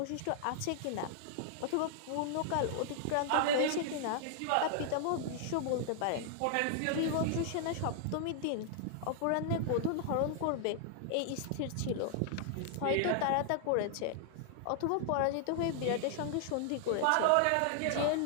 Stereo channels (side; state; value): both; different; correlation 0.00